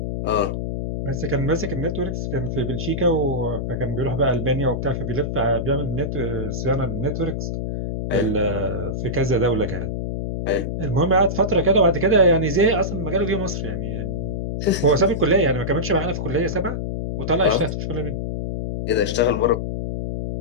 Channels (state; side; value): noise; left; hum, 3 dB below the sound